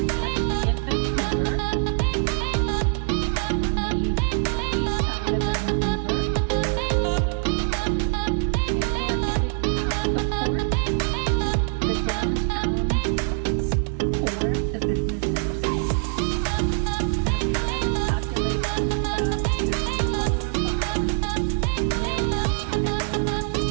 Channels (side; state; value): left; silent; digital silence